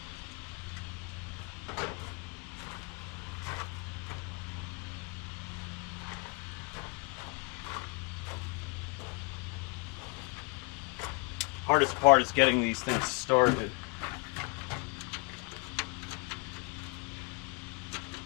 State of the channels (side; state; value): right; quieter; 31.5 dB